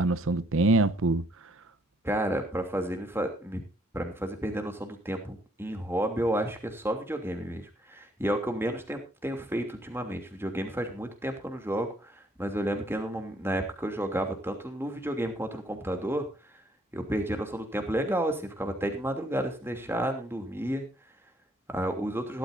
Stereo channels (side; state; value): both; normal; correlation 0.66